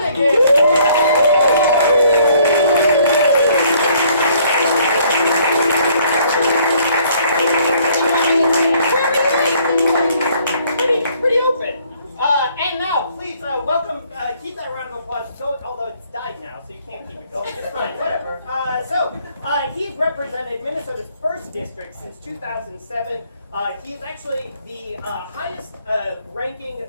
Pretty open. And now, please welcome, keep that round of applause going, although it's died now, so you can't keep it going. It's fine, whatever. He's represented Minnesota's 1st district since 2007. He's actually the highest ranking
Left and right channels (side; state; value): both; inverted; correlation -0.63